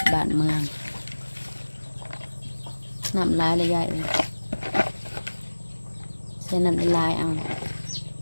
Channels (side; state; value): both; inverted; correlation -1.00